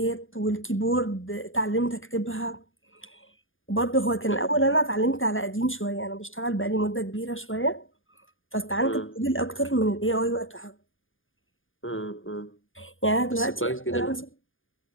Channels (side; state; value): right; late; 0.58 ms